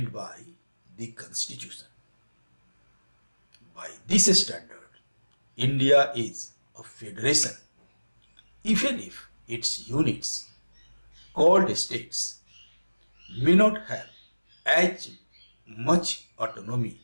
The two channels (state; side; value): inverted; both; correlation -1.00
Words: by the Constitution. By this standard, India is a federation, even if its units, called states, may not have as much autonomy